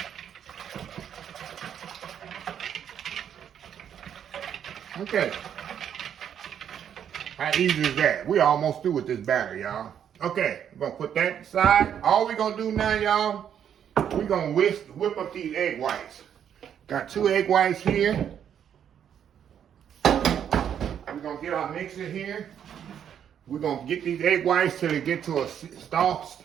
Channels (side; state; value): left; quieter; 9.0 dB